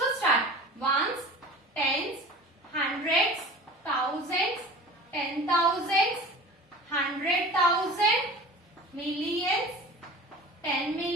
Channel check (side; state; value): both; normal; correlation 0.39